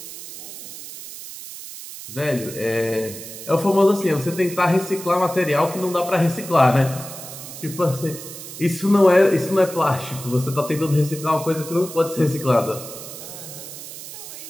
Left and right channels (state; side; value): noise; right; hiss, 12 dB below the sound